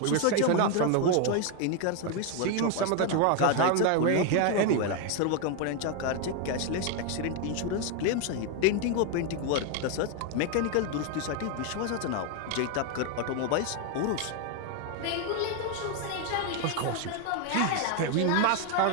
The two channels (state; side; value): different; both; correlation 0.01